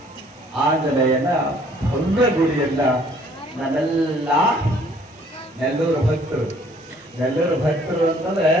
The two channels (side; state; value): both; normal; correlation 0.59